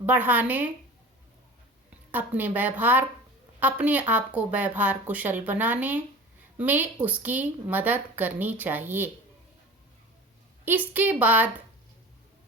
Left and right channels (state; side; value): normal; both; correlation 0.38